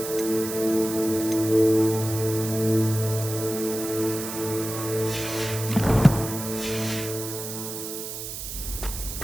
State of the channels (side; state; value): right; noise; hiss, 7 dB below the sound